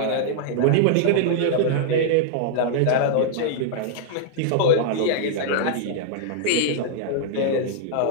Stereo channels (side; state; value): both; different; correlation -0.01